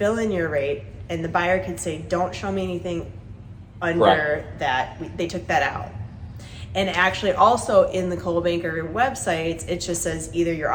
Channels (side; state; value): both; identical; correlation 1.00